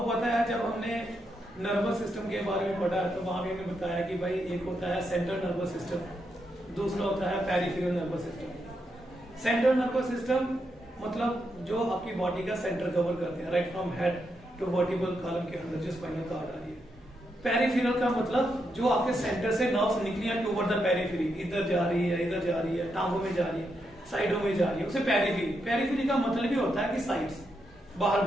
पता है जब हमने नर्वस सिस्टम के बारे में पढ़ा तो वहां भी हमने बताया कि भाई एक होता है सेंट्रल नर्वस सिस्टम, दूसरा होता है peripheral nervous system. Central nervous system मतलब जो आपकी बॉडी का सेंटर कवर करते हैं, right from head to vertebral column के अंदर जो स्पाइनल कॉर्ड आ रही है। पेरिफेरल का मतलब जो आपके सेंटर से नर्व्स निकली है टुवर्ड द पेरिफेरी, इधर जा रही है, इधर जा रही है, टांगों में जा रही है, साइडों में जा रही है, उसे पेरिफेरी। पेरिफेरी का मतलब भी होता है कि साइड्स, बाहर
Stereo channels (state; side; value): normal; both; correlation 0.82